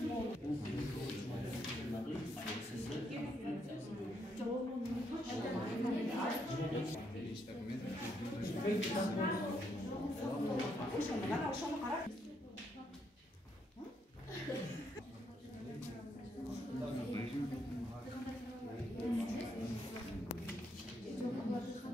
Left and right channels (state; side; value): normal; both; correlation 0.76